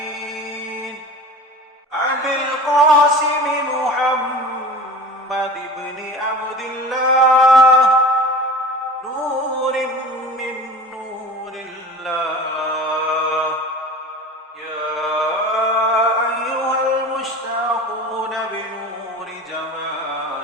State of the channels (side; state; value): both; normal; correlation 0.37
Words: أبي القاسم محمد بن عبد الله، نور من نور الله. يا أيها المشتاقون بنور